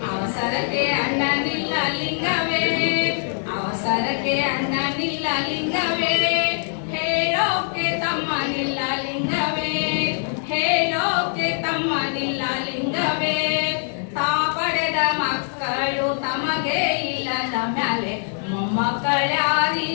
ಅವಸರಕ್ಕೆ ಅಣ್ಣನಿಲ್ಲ ಲಿಂಗವೇ, ಅವಸರಕ್ಕೆ ಅಣ್ಣನಿಲ್ಲ ಲಿಂಗವೇ, ಹೇಳೋಕೆ ತಮ್ಮನಿಲ್ಲ ಲಿಂಗವೇ, ಹೇಳೋಕೆ ತಮ್ಮನಿಲ್ಲ ಲಿಂಗವೇ, ತಾ ಪಡೆದ ಮಕ್ಕಳು ತಮಗೆ ಇಲ್ಲದ ಮ್ಯಾಲೆ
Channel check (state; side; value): silent; right; 60 dB below the other